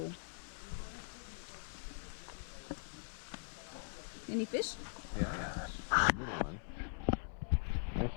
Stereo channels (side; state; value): right; silent; 50 dB below the other